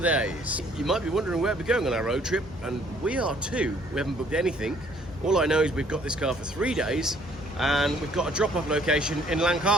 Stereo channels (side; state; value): both; normal; correlation 0.61